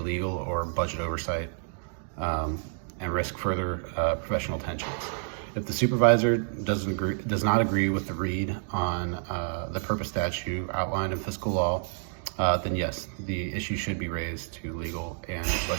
or budget oversight and risk further professional tensions. If the supervisor does not agree with the read on the purpose statute outlined in fiscal law, then yes, the issue should be raised to legal and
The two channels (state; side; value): silent; left; digital silence